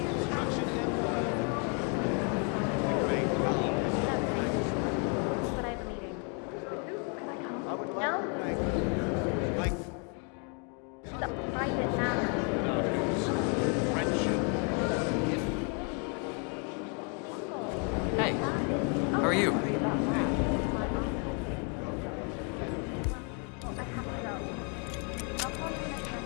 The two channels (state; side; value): quieter; right; 38.3 dB